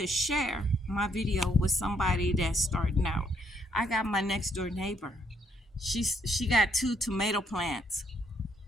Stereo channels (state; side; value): normal; both; correlation 0.72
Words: share my video with somebody that's starting out. I got my next door neighbor. She got 2 tomato plants